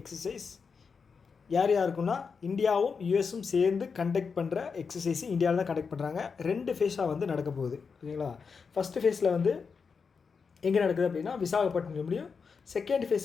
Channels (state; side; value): quieter; right; 5.5 dB